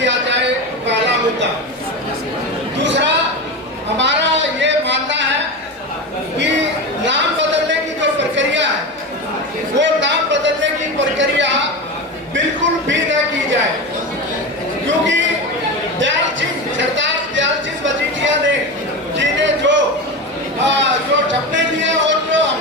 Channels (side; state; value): both; normal; correlation 0.22